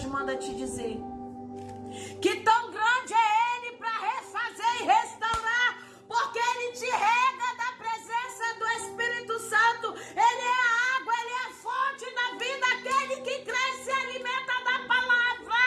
manda te dizer que tão grande é Ele para refazer e restaurar, porque Ele te rega da presença do Espírito Santo. Ele é a água, Ele é a fonte da vida, aquele que cresce e se alimenta da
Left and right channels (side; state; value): both; identical; correlation 1.00